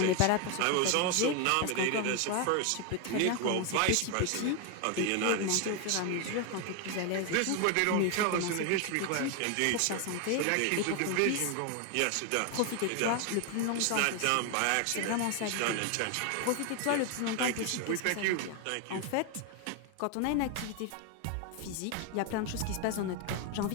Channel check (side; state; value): both; different; correlation 0.01